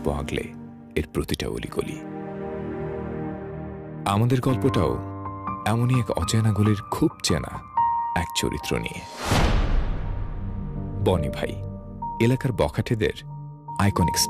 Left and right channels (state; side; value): identical; both; correlation 1.00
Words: আগলে এর প্রতিটা অলিগলি। আমাদের গল্পটাও এমনই এক অচেনা গলির খুব চেনা এক চরিত্র নিয়ে। বনি ভাই এলাকার বখাটেদের আইকনিক